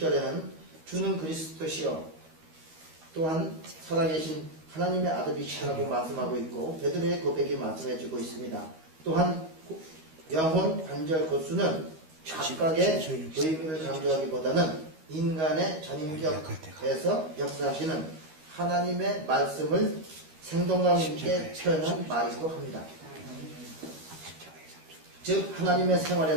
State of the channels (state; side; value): late; left; 13 ms